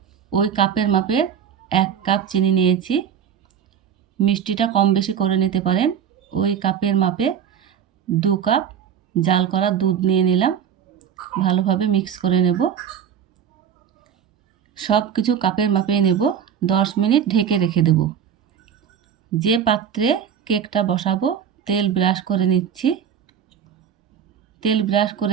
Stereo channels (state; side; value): quieter; left; 8.5 dB